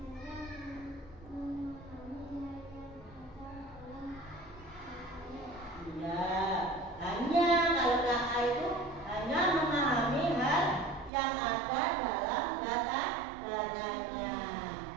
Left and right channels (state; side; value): drops out; left; at 11.1 s